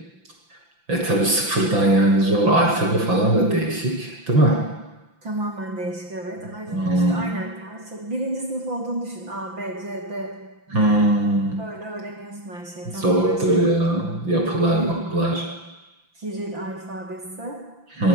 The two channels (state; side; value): late; left; 5.9 ms